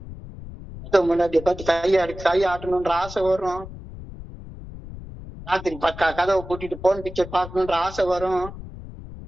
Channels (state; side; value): noise; left; rumble, 13 dB below the sound